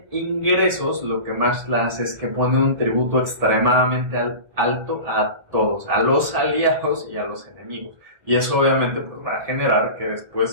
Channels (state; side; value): late; left; 1.7 ms